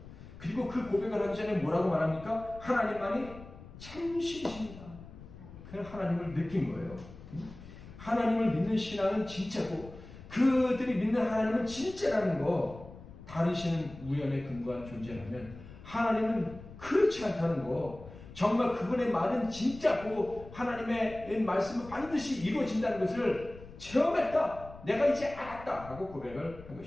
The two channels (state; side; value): noise; left; rumble, 17 dB below the sound